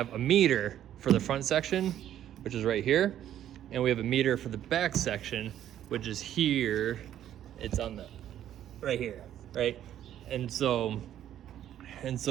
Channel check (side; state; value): left; quieter; 11.2 dB